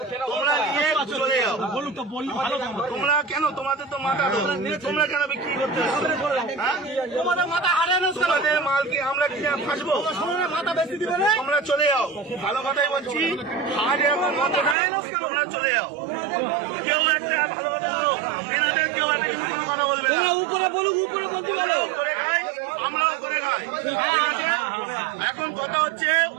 তোমরা নিয়ে চলে যাও। তোমরা কেন, তোমাদের তো মাথা তো, তোমরা কেন বিক্রি করতে তোমাদের মাথা হারানো, তোমাদের মালকে আমরা কিনে ফাঁসবো, মাথা বেশি দিবে, তোমরা চলে যাও। ভালো কথাই বলছি, আজ এখন মাথা নেয়, তোমরা চলে যাও। কেউ একটা ভালো কথা বলো, এনাদের কেউ একটা কোনো কথা বলবে না, উপরে বলুক, উপরে বলতে বলো, করে খাই, আমরাও করে খাই। এখন কথা হচ্ছে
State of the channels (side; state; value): left; drops out; at 14.8 s